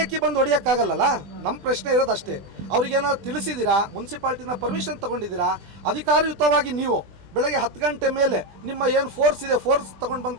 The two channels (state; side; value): late; left; 20 ms